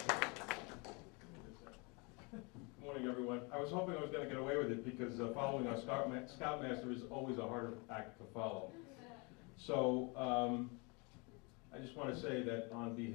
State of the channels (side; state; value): right; quieter; 30.2 dB